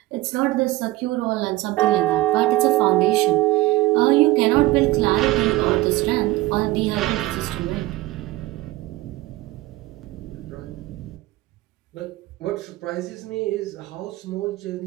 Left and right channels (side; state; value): left; quieter; 18.4 dB